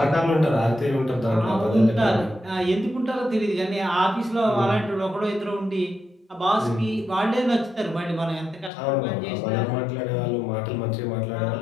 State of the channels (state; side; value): drops out; right; at 8.7 s